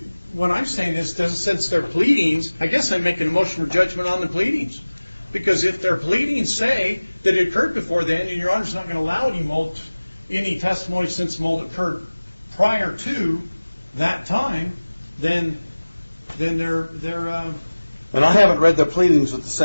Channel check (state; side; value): inverted; both; correlation -1.00